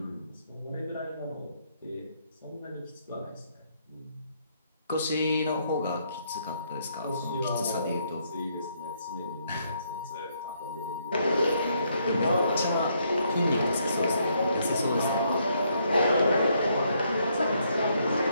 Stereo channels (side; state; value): both; inverted; correlation -0.73